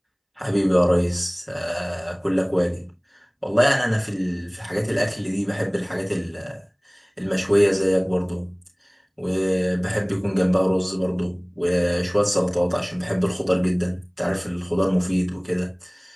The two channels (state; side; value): identical; both; correlation 1.00